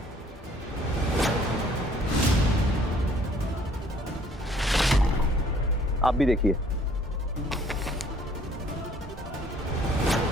आप भी देखिए।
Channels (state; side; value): normal; both; correlation 0.59